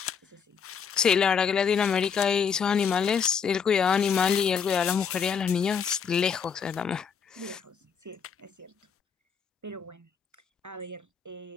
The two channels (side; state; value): right; quieter; 6.7 dB